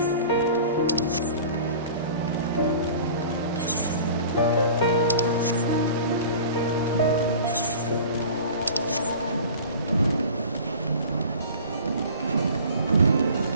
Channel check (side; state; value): both; inverted; correlation -0.42